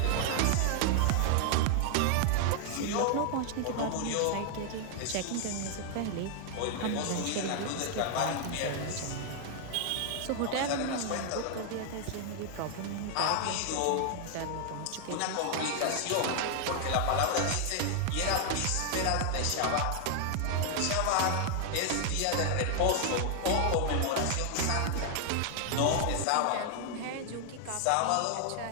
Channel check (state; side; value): different; both; correlation 0.00